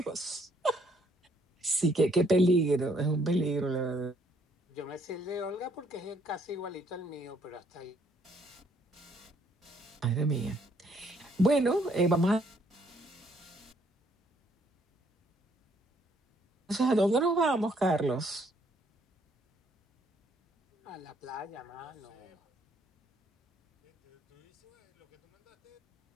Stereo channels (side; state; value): both; normal; correlation 0.67